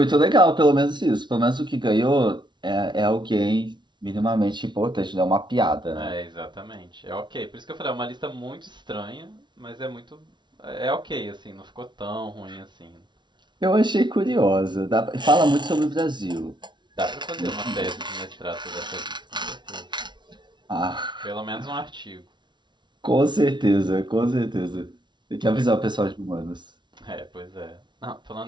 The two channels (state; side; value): late; left; 0.22 ms